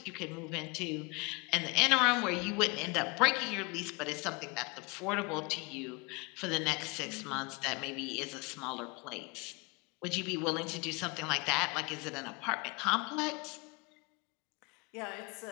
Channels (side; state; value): right; quieter; 27.6 dB